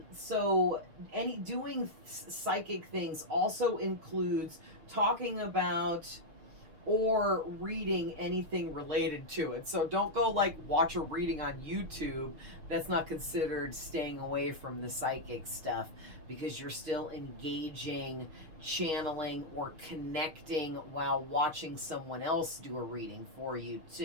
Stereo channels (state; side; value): late; left; 6.6 ms